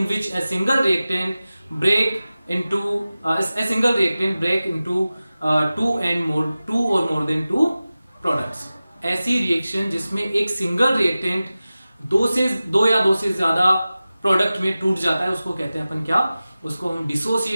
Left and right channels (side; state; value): both; inverted; correlation -0.96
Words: break into 2 or more than 2 products. ऐसी रिएक्शन जिसमें एक सिंगल रिएक्टेंट दो या दो से ज्यादा प्रोडक्ट में टूट जाता है, उसको कहते हैं अपन क्या, उसको हम